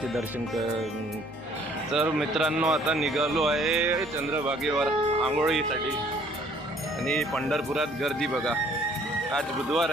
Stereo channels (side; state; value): both; normal; correlation 0.59